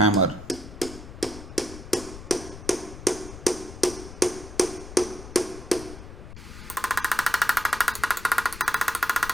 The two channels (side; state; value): left; noise; rumble, 13 dB below the sound